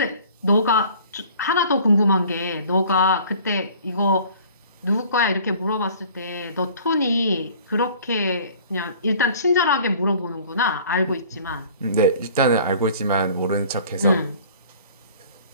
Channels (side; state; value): both; inverted; correlation -0.49